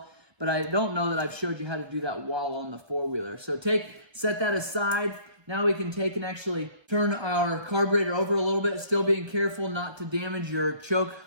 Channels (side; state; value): left; late; 1.1 ms